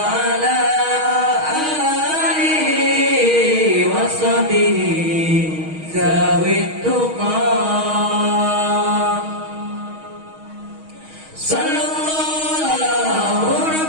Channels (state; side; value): late; left; 6.3 ms